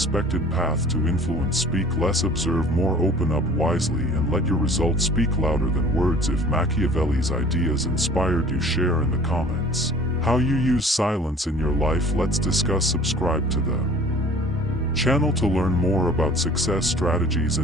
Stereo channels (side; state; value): both; normal; correlation 0.48